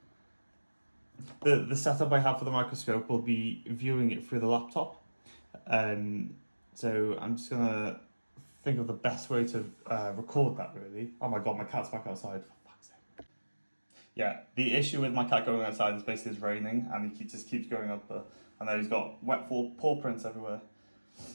The setup I have for the microscope will be viewing it through the laptop. So I'm just gonna think of the best way to record that, really. Oh my god, my cat's back outside, for fuck's sake. Yeah, the issue with my cat going outside is basically it's raining and he just keeps going up there. And then he's got wet paw prints everywhere.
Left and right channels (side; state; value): both; inverted; correlation -1.00